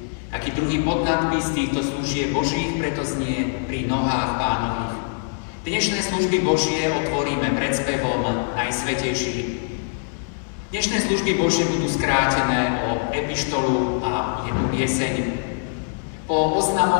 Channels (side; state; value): right; silent; digital silence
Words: Aký druhý podnadpis týchto služieb Božích preto znie Pri nohách Pánových. Dnešné služby Božie otvoríme predspevom Najsvätejší. Dnešné služby Božie budú skrátené o epištolu a jednu pieseň. Po